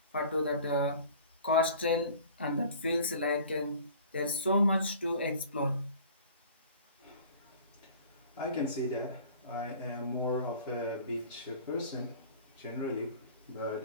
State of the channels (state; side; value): inverted; both; correlation -0.46